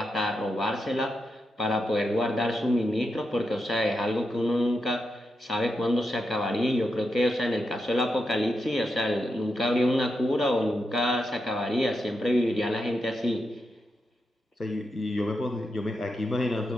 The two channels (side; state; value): both; normal; correlation 0.86